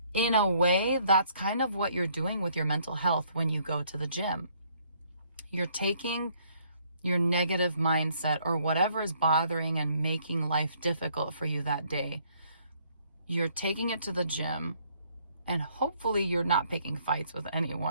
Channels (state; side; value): inverted; both; correlation -0.65